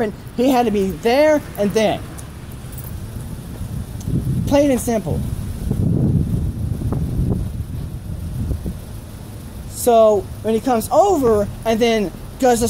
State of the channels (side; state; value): both; identical; correlation 1.00